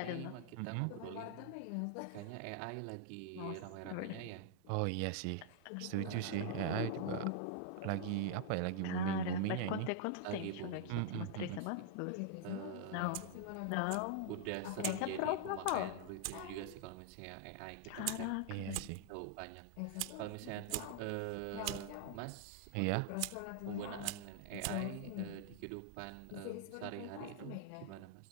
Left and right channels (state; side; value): different; both; correlation -0.01